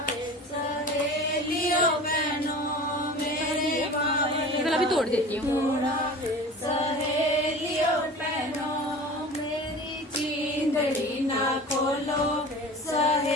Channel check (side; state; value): both; normal; correlation 0.38